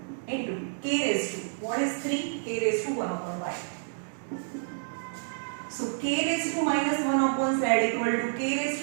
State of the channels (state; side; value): silent; left; digital silence